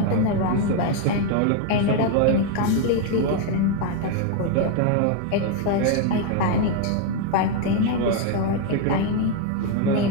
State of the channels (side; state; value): both; different; correlation 0.01